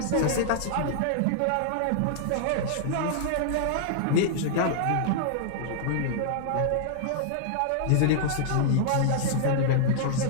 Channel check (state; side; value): different; both; correlation -0.01